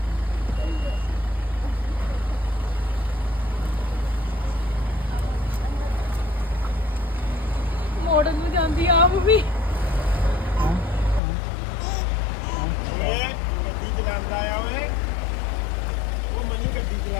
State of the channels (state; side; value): drops out; right; at 11.2 s